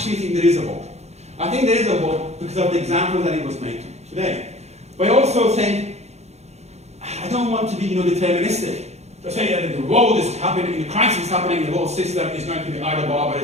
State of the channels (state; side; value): late; left; 0.32 ms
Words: think there is a hope. I think there is a hope because of the example that it was made today. But I also think, I don't want to be deterministic. To say that the world is happening, the crisis is happening, the whole system is going to be either